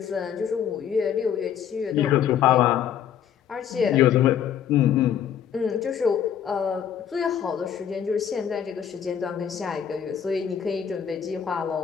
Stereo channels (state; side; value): quieter; right; 8.8 dB